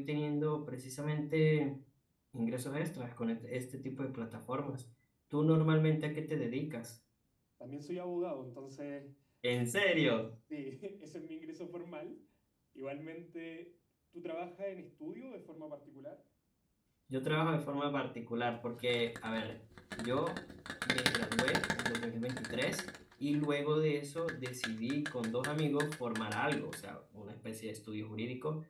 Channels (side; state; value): both; identical; correlation 1.00